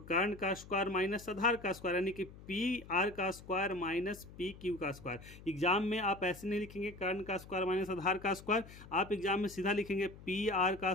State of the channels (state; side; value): noise; left; hum, 18 dB below the sound